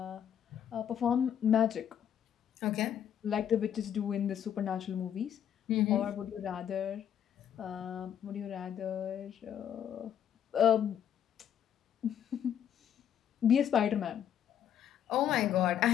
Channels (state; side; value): quieter; right; 9.4 dB